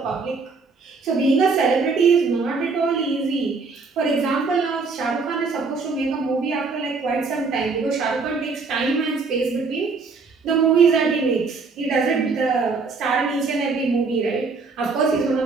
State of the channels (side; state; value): left; quieter; 4.4 dB